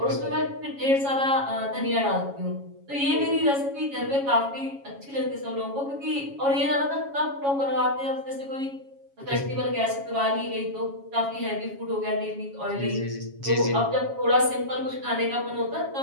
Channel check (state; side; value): late; left; 7.2 ms